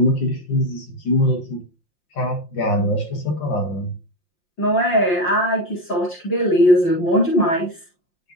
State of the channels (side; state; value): right; late; 5.7 ms